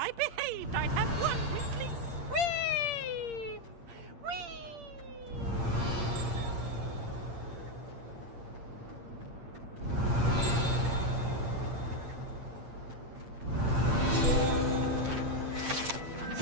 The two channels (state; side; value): late; left; 8.7 ms